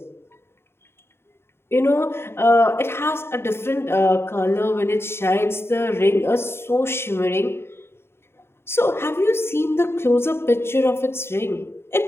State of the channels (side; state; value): right; late; 0.12 ms